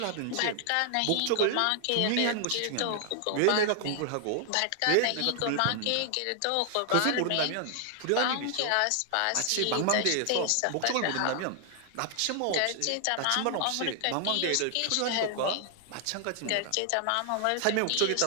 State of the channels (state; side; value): different; both; correlation 0.00